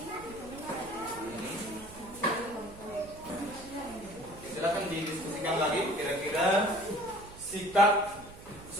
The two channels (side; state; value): right; noise; hum, 18 dB below the sound